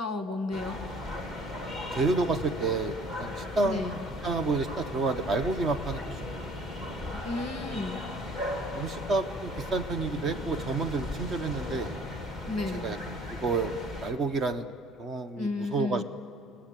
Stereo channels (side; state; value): both; normal; correlation 0.55